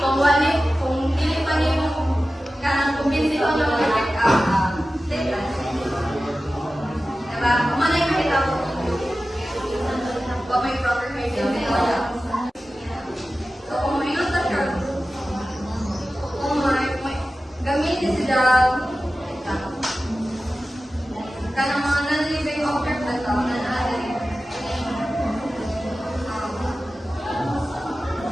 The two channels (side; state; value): both; normal; correlation 0.95